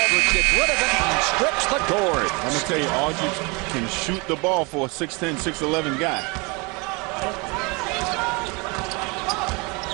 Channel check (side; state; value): left; quieter; 28.4 dB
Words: gets rid of it and strips the cord. I'm going to tell you, Aldridge can shoot the ball for a 6'10", 6'11" guy.